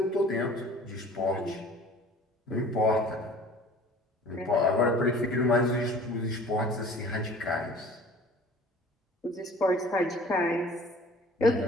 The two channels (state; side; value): normal; both; correlation 0.48